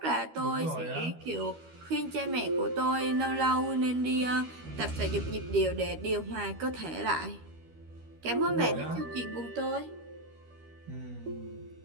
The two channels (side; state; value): left; late; 13 ms